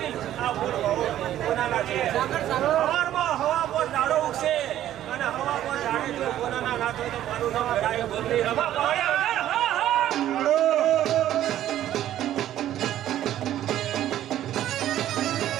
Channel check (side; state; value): left; quieter; 12.3 dB